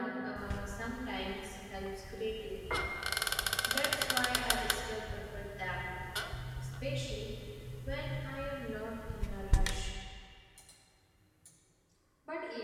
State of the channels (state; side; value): identical; both; correlation 1.00